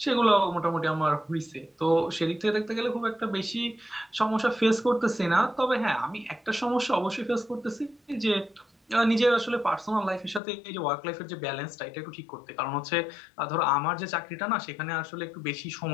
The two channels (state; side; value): drops out; right; at 10.4 s